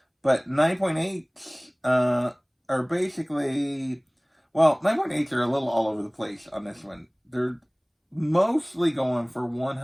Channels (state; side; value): identical; both; correlation 1.00